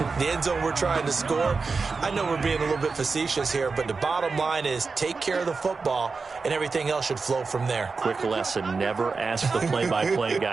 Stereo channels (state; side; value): quieter; left; 4.5 dB